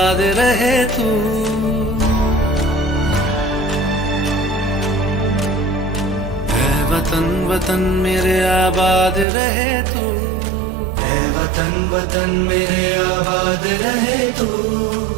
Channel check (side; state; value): left; drops out; at 9.2 s